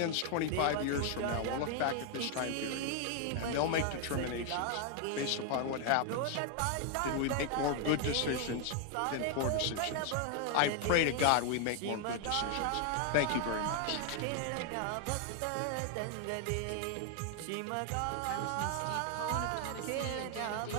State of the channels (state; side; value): different; both; correlation 0.00